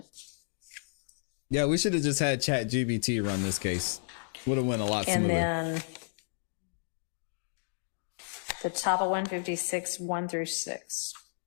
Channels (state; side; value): silent; right; digital silence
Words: Yeah, we should have just had ChatGPT run this case. Would have went a lot And smoother. then the top of 156, 1 through 6.